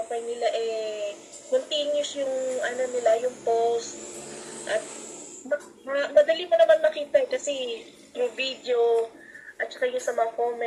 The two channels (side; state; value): both; identical; correlation 1.00